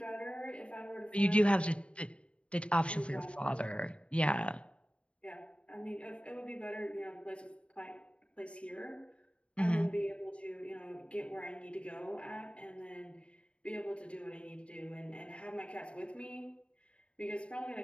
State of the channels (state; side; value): late; right; 0.059 ms